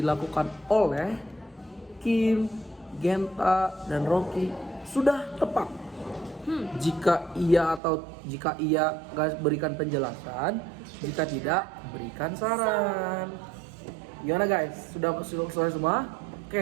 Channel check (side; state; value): left; drops out; at 7.8 s